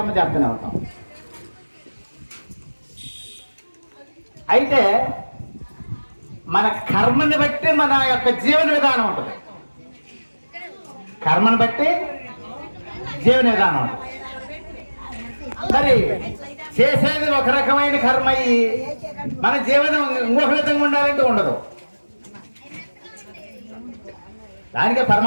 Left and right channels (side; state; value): both; inverted; correlation -1.00